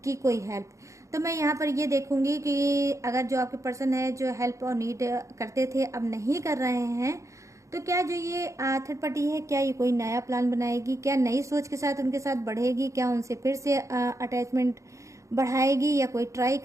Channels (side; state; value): left; late; 0.15 ms